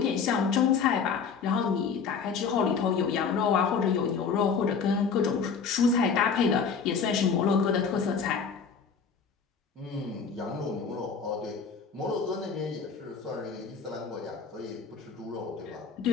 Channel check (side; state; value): right; quieter; 5.8 dB